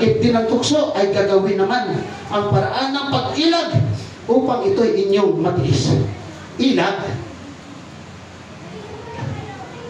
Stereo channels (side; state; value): both; identical; correlation 1.00